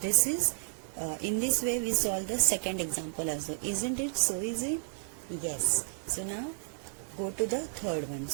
is in this way we solve the second example also. Isn't it so easy? Yes. So now go to the third one.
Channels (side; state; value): left; silent; digital silence